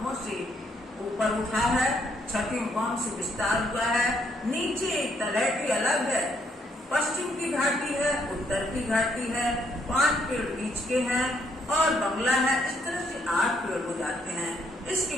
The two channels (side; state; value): both; normal; correlation 0.72